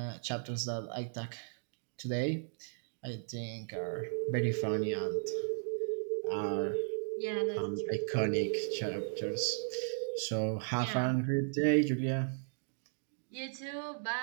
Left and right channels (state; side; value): silent; left; digital silence